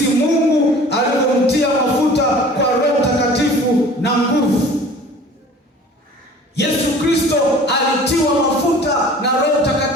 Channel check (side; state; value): both; normal; correlation 0.45